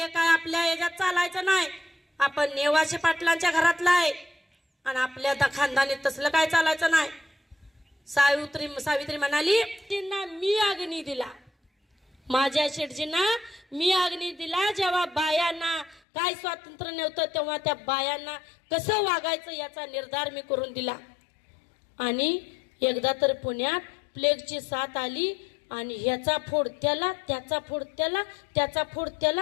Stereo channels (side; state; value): right; drops out; at 16.0 s